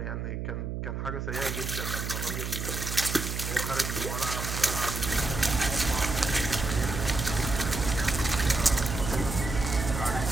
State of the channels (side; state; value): right; noise; hum, 4 dB below the sound